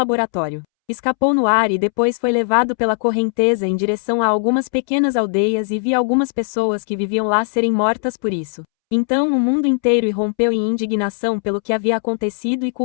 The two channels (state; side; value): silent; right; 67 dB below the other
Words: Escapou no ar e depois foi levado pela correnteza em direção a algumas pequenas aldeias e vi algumas pessoas que viviam lá serem mortas por isso. Então o mundo inteiro irrompeu em indignação pelo que havia acontecido e